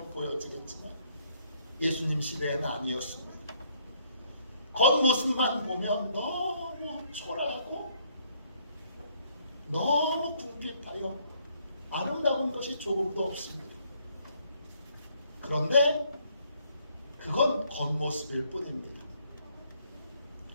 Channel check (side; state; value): both; inverted; correlation -0.67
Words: 보여지겠지만 예수님 시대에는 아니었습니다. 겉모습만 보면 너무 초라하고 너무 궁핍하여 아름다운 것이 조금도 없습니다. 그런데 그건 겉모습일 뿐입니다.